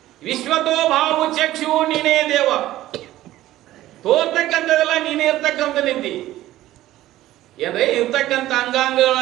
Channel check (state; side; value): quieter; left; 14.9 dB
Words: ವಿಶ್ವತೋ ಭಾವು ಚಕ್ಷು ನೀನೇ ದೇವ, ತೋರ್ತಕ್ಕಂಥದ್ದೆಲ್ಲ ನೀನೇ ಇರ್ತಕ್ಕಂಥ ನಿಂತಿ. ಏನ್ರಿ ಇರ್ತಕ್ಕಂಥ